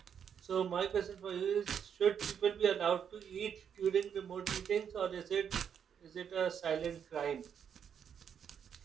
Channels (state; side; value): quieter; left; 7.9 dB